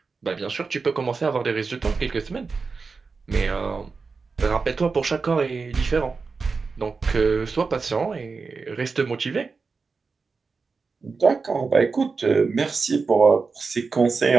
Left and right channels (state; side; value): quieter; left; 4.6 dB